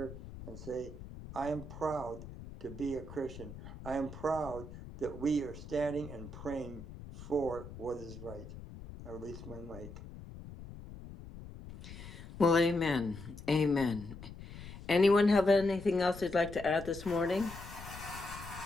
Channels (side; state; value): left; noise; rumble, 13 dB below the sound